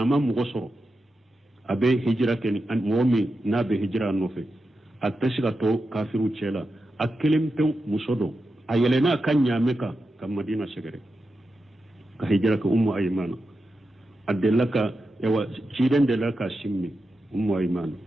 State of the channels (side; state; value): both; normal; correlation 0.89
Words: ma mu goso abe hijra ke an momi na be hijra nofe atashga to kafiru chela akelim to musodo ayelena kanya meka kam madina shegere ka hijra ka ummu aymana adelaka yawa cidan da laka shimmi ummu ayman